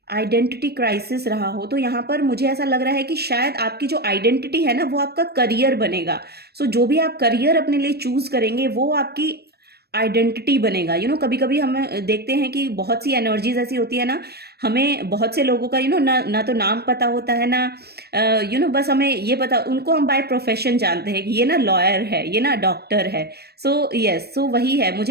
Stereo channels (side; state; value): left; late; 0.47 ms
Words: आइडेंटिटी क्राइसिस रहा हो। तो यहाँ पर मुझे ऐसा लग रहा है कि शायद आपकी जो आइडेंटिटी है ना वो आपका करियर बनेगा। सो जो भी आप करियर अपने लिए चूज करेंगे वो आपकी आइडेंटिटी बनेगा। कभी कभी हम देखते हैं कि बहुत सी एनर्जीज ऐसी होती है ना, हमें बहुत से लोगों का ना तो नाम पता होता है ना बस हमें ये पता, उनको हम बाय प्रोफेशन जानते हैं कि ये ना लॉयर है, ये ना डॉक्टर है। सो यस, सो वही है।